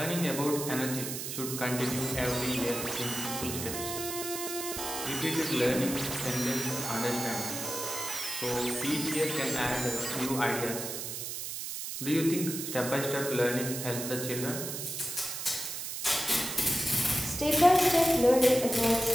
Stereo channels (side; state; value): right; noise; hiss, 5 dB below the sound